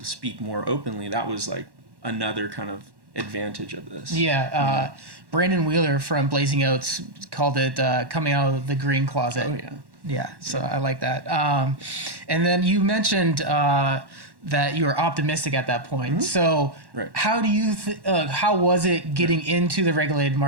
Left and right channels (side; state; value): left; late; 1.1 ms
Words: speak more openly, that was like another kind of advantage of this. Yeah. Brandon Wheeler from Blazing Oats called it coming out of the green closet. Oh, yeah. Yeah, so I like that. And then you mentioned that you were optimistic at that point. Mm-hmm. So Right. how do you how was it getting into the regulated